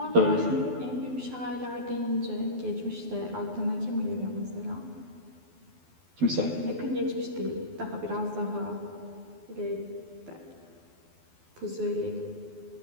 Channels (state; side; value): late; left; 12 ms